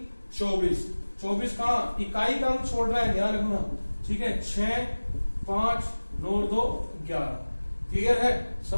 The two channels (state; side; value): inverted; both; correlation -1.00